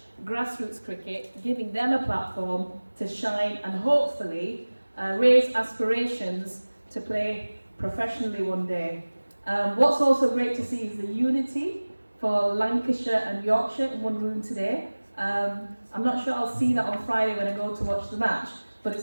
grassroots cricket, giving them a platform to shine and hopefully raise aspirations to play professionally one day. What's also great to see is the unity for Lancashire and Yorkshire in one room today. I'm not sure I'll see that on Friday when I go to watch the match, but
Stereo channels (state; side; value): inverted; both; correlation -1.00